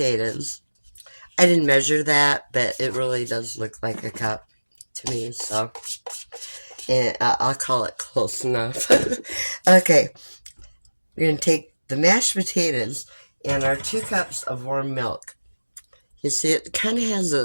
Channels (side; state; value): both; inverted; correlation -1.00